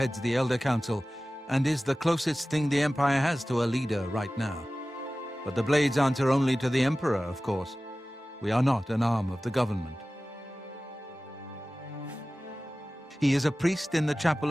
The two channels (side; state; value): both; normal; correlation 0.96